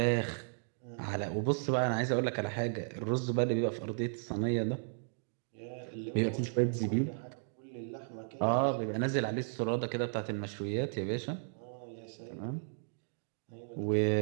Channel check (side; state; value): left; silent; digital silence